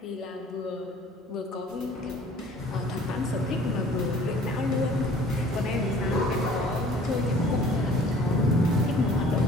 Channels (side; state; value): both; normal; correlation 0.51